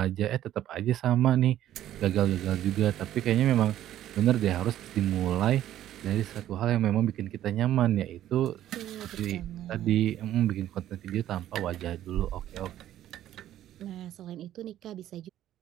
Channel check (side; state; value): left; quieter; 12.5 dB